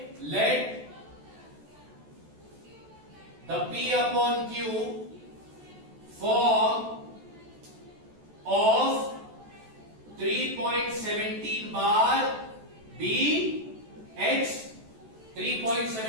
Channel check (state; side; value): late; left; 14 ms